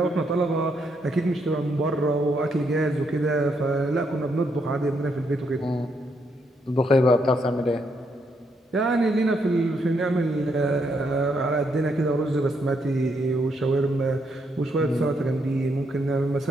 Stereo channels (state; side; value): normal; both; correlation 0.76